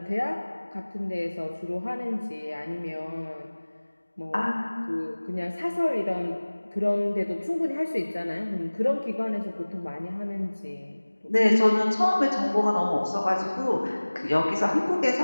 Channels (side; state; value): both; inverted; correlation -1.00